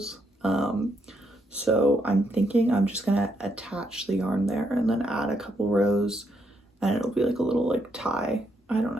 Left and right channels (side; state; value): both; normal; correlation 0.77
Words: So I'm thinking I'm just gonna attach the yarn there and then add a couple rows, and it'll be like a little like tie, I don't